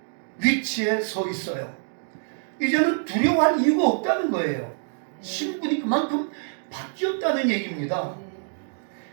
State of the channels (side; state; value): left; silent; digital silence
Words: 위치에 서 있어요. 이제는 두려워할 이유가 없다는 거예요. 신분이 그만큼 바뀌었다는 얘기입니다.